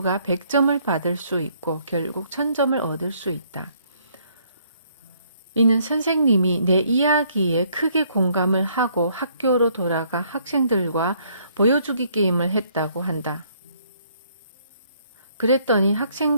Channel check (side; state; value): both; inverted; correlation -0.66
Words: 100점을 받을 수 있고 결국 1000점을 얻을 수 있다. 이는 선생님이 내 이야기에 크게 공감을 하고 학교로 돌아가 학생들과 보여주기 게임을 했다고 한다. 그랬더니